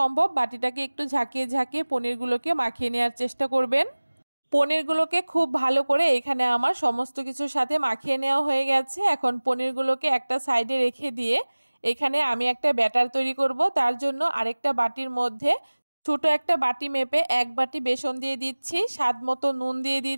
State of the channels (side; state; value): both; inverted; correlation -1.00